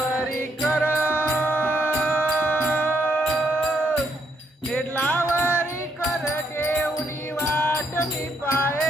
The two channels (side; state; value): both; normal; correlation 0.74